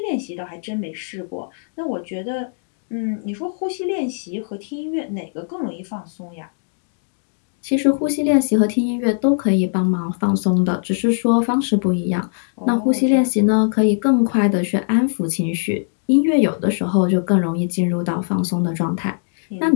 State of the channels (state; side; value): silent; right; digital silence